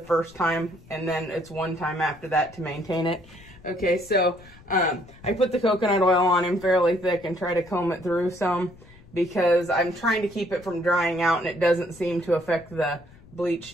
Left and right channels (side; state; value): left; noise; rumble, 23 dB below the sound